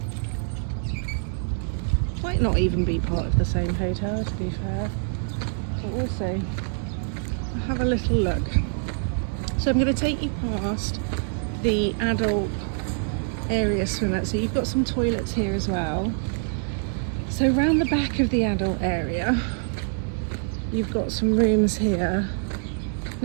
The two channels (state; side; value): silent; left; 61 dB below the other